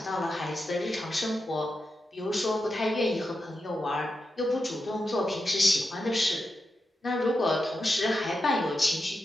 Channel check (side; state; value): both; normal; correlation 0.89